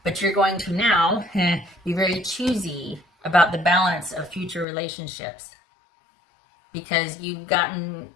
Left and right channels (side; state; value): right; drops out; at 4.7 s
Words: But you're going to now be very choosy about the balance of future relationships, because you've gotten,